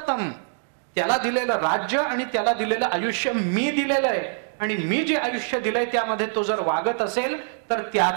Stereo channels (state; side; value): silent; left; digital silence